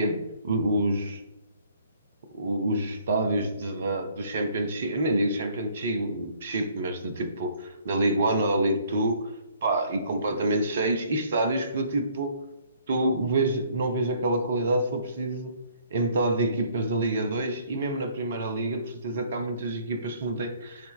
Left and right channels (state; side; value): inverted; both; correlation -0.60